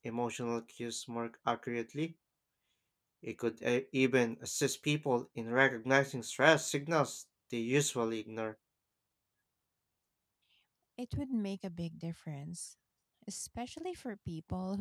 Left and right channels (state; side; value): identical; both; correlation 1.00